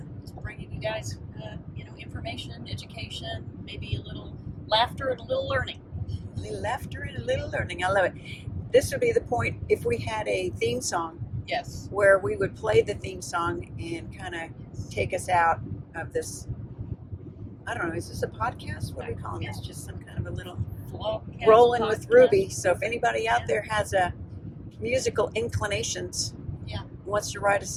Just bringing you guys, information, education, maybe a little laughter and a little learning. A little laughter and a little learning. I love it. This would be the point if we had a theme song. Yes. Where we would play the theme song and kind of take us out of this. I don't know. Is this a podcast? What are we calling this? Just some kind of a little rolling with Ruby. So if anybody out there has a musical inclinations, wants to write us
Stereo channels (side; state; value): both; identical; correlation 1.00